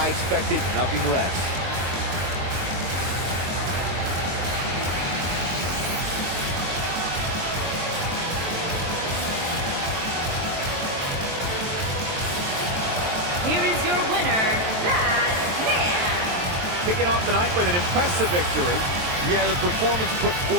expected nothing less. Here is your winner, Baddest. Kicking off the night with an impressive victory. Yeah, the performance put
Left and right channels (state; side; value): late; left; 23 ms